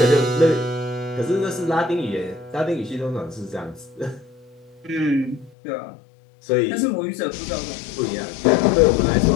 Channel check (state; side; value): drops out; right; at 5.5 s